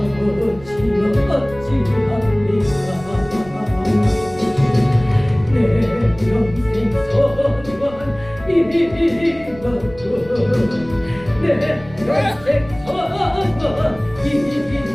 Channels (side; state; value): right; noise; rumble, 18 dB below the sound